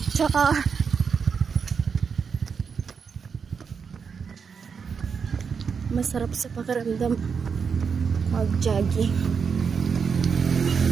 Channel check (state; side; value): quieter; left; 6.1 dB